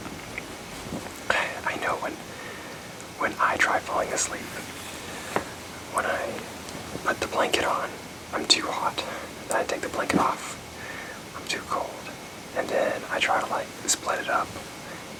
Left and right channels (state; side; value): identical; both; correlation 1.00